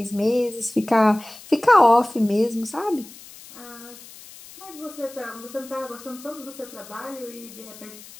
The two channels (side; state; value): left; noise; hiss, 18 dB below the sound